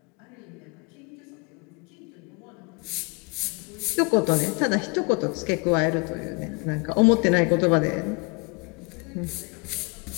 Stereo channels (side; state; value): right; quieter; 30.6 dB